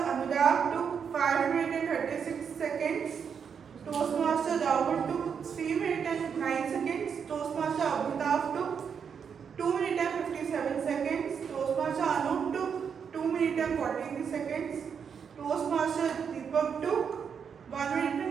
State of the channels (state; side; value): quieter; left; 6.9 dB